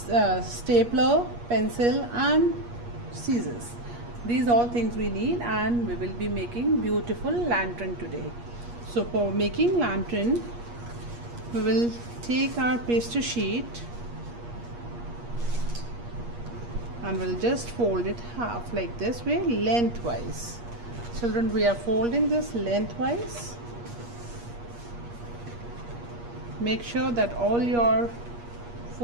pencil and scissors. These all things we need, and we will be making beautiful lantern today. So for making lantern, we will take our pastry sheet and we'll just fold it half like this way, lengthwise. Children, we are folding this lengthwise. Make sure that all your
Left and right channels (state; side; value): late; left; 8.4 ms